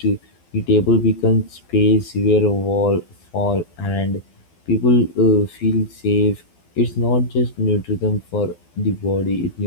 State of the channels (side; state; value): right; late; 12 ms